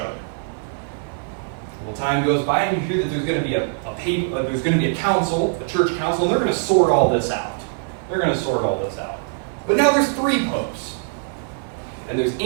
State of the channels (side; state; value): left; silent; 58 dB below the other